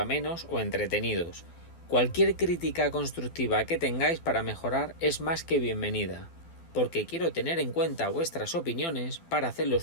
o entretenidos. Cualquier crítica constructiva que tengáis para mejorar es más que bienvenida, porque quiero tener en cuenta vuestras opiniones para hacer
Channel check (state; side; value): late; right; 12 ms